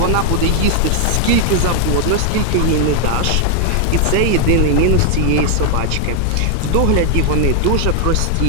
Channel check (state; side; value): different; both; correlation 0.00